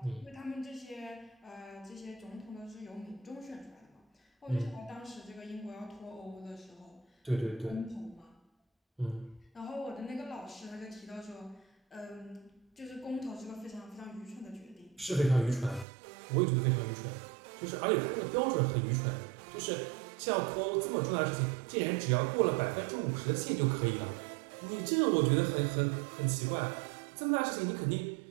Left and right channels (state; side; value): drops out; left; at 15.9 s